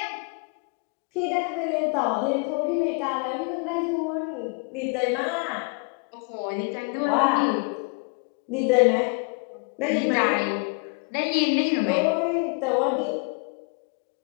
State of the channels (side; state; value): right; quieter; 33.4 dB